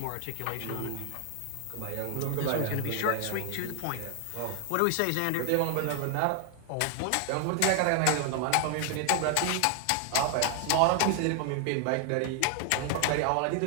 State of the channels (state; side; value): different; both; correlation 0.00